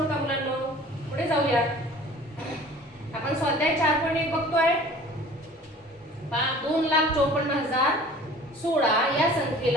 मुलांनो. पुढे जाऊया. आपण स्वाध्याय 4.1 बघतोय. 2,54,016 या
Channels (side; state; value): both; normal; correlation 0.47